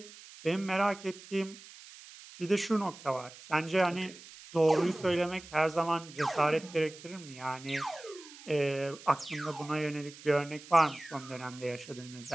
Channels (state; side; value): noise; right; hiss, 18 dB below the sound